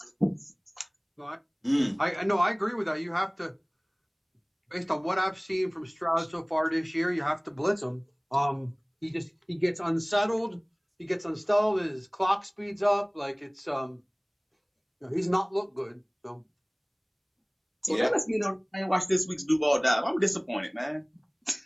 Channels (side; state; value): both; identical; correlation 1.00